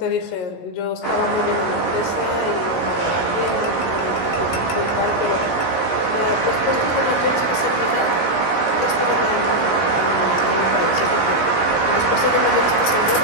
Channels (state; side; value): late; right; 16 ms